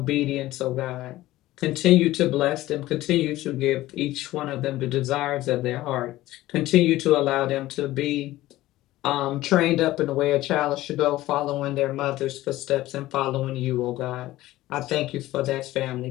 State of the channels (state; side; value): quieter; right; 16.3 dB